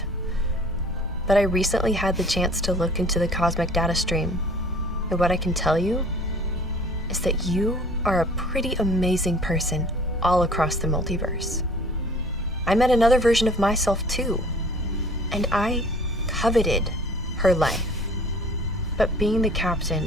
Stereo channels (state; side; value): normal; both; correlation 0.50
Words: But I recently had the chance to look into the cosmic data stream. And what I can tell you is that you are a pretty amazing person all across the multiverse. I met another version of myself too, and I coveted her life. But being the